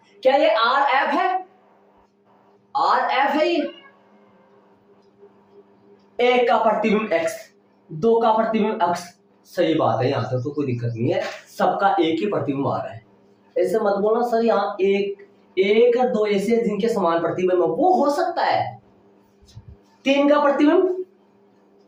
क्या ये RF है, RF है ये? एक का प्रतिबिंब x, दो का प्रतिबिंब x, सही बात है, यहां तक तो कोई दिक्कत नहीं है, सबका एक ही प्रतिबिंब आ रहा है। ऐसे मत बोलना सर यहाँ एक और दो ऐसे जिनके समान प्रतिबिंब है, वो हो सकता है। 3 का प्रतिबिंब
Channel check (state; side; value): identical; both; correlation 1.00